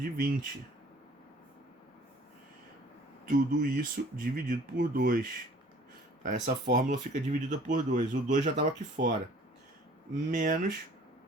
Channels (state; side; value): normal; both; correlation 0.52